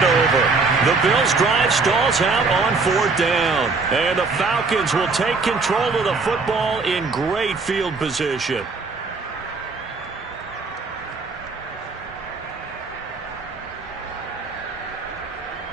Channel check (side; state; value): left; quieter; 4.1 dB